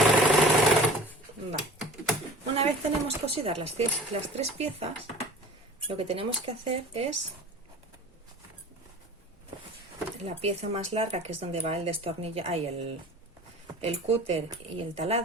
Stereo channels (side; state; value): both; normal; correlation 0.41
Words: Una vez tenemos cosidas las 3 piezas, lo que tenemos que hacer es la pieza más larga, que es donde va el destornillador, el cúter y el